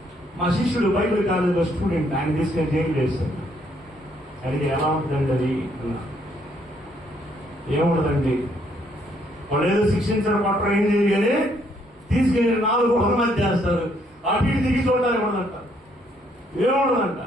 మా శిష్యుడు బైబిల్ కాలేజీలో స్టూడెంట్, ఆయన తీసుకెళ్ళి జైలు చేశాడు. అడిగి ఎలా ఉంటుందండి అది అన్నా. ఏముండదండి, వాళ్ళు ఏదో శిక్షించడం పట్టడం ఏం చేయగానే తీసుకెళ్ళి 4 గోడల మధ్య చేస్తారు. అటు ఇటు దిగి చూడాలి ఉండదంట. ఏముండదంట.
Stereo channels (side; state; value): both; normal; correlation 0.69